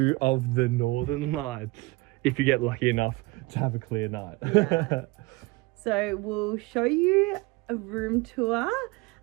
of the Northern Lights, if you get lucky enough to have a clear night. Yeah. So we'll show you a room tour,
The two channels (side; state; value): left; quieter; 22.8 dB